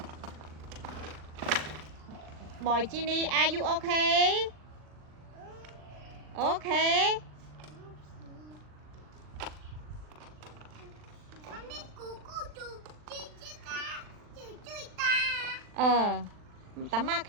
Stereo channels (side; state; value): left; late; 39 ms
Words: Boy Ginny, are you okay? Okay. Tắm ma